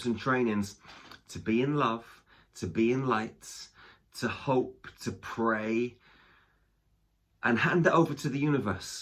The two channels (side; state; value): both; identical; correlation 1.00